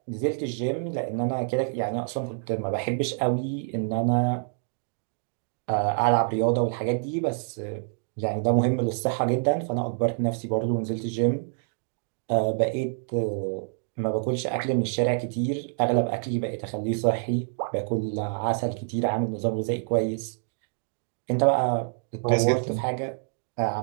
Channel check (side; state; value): left; silent; digital silence